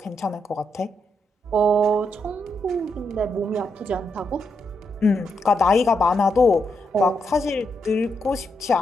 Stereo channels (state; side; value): normal; both; correlation 0.81